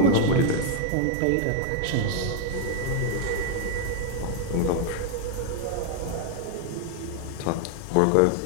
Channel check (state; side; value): different; both; correlation 0.00